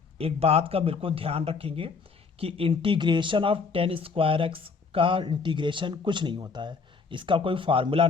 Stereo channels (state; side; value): quieter; right; 4.9 dB